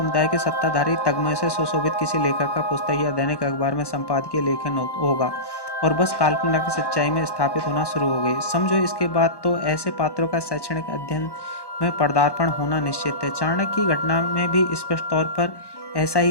के सत्ताधारी तगमय से सुशोभित किसी लेखक का पुस्तक या दैनिक अखबार में संपादकीय लेखन होगा और बस काल्पनिक की सच्चाई में स्थापित होना शुरू हो गई। समझो इसके बाद तो ऐसे पात्रों का शैक्षणिक अध्ययन में पदार्पण होना निश्चित है। चाणक्य की घटना में भी स्पष्ट तौर पर ऐसा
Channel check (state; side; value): late; right; 1.1 ms